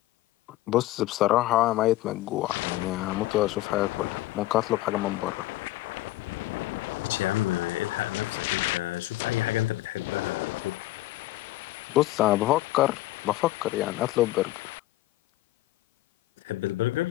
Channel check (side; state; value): right; quieter; 16.7 dB